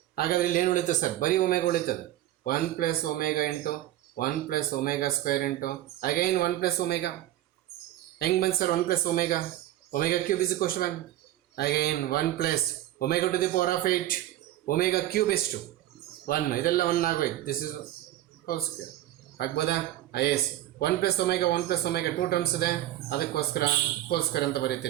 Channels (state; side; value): quieter; left; 14.0 dB